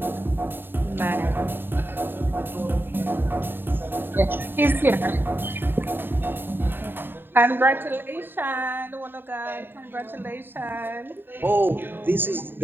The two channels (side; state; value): left; late; 0.098 ms